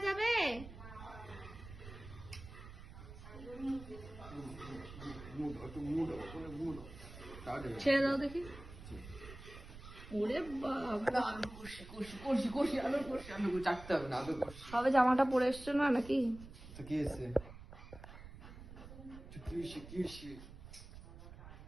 যাবে? ছেড়ে দাও দেখি। ওরে বাবা, সবে জামাটা পরে এসছো না নাকি?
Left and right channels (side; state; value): right; noise; rumble, 15 dB below the sound